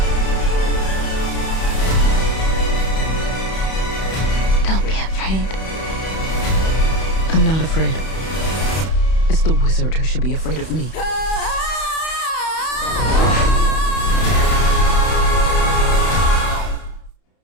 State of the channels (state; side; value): late; right; 31 ms